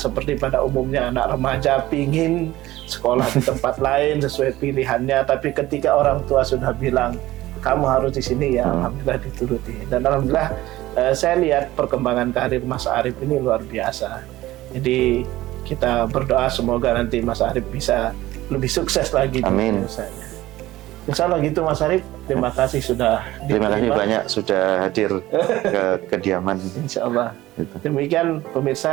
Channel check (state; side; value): quieter; left; 16.5 dB